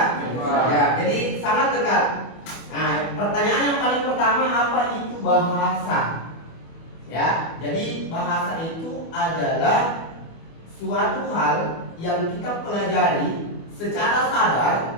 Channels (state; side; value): late; right; 24 ms